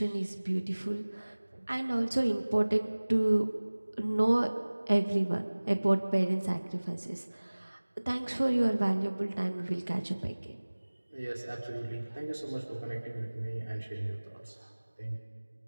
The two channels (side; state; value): both; inverted; correlation -1.00